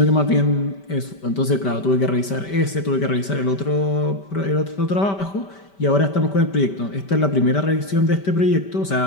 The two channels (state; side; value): late; right; 5.1 ms